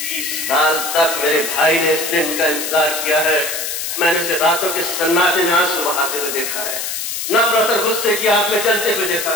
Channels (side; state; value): left; noise; hiss, 4 dB below the sound